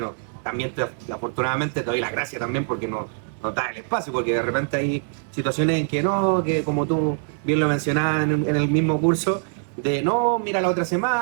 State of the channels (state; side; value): silent; left; digital silence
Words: también afortunadamente te doy las gracias también porque nos da el espacio, porque de repente hay situaciones en que no, que como tú bien lo mencionabas en el mismo curso, de no, mira la otra